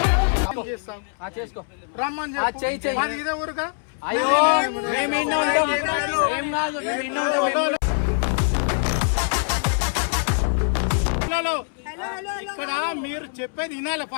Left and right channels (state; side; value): silent; right; 63 dB below the other